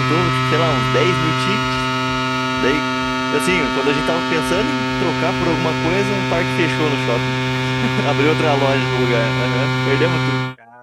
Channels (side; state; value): both; identical; correlation 1.00